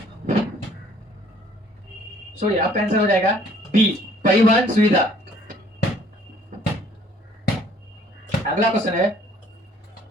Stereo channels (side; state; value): both; normal; correlation 0.58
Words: सॉरी, आपका आंसर हो जाएगा बी, परिवहन सुविधा। अगला क्वेश्चन है